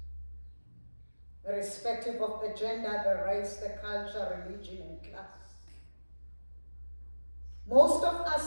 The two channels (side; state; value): both; inverted; correlation -1.00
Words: irrespective of the gender, the race, the culture, religion, and class. Most of